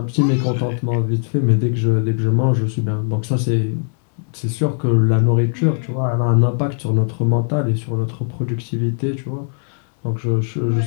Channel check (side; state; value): right; silent; 56 dB below the other